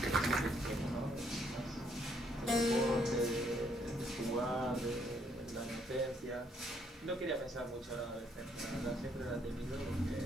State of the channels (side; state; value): both; normal; correlation 0.70